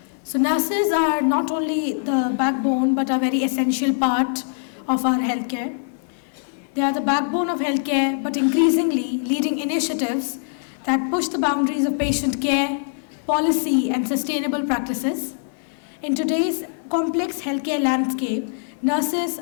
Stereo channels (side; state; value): right; silent; 64 dB below the other